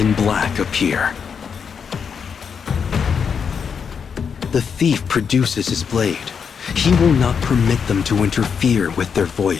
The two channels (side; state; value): right; quieter; 6.6 dB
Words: black appear. The thief produces his blade. He will not permit them to interfere with their